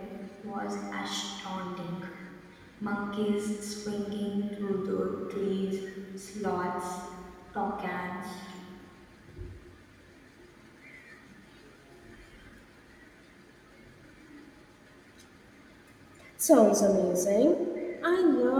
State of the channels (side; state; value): both; identical; correlation 1.00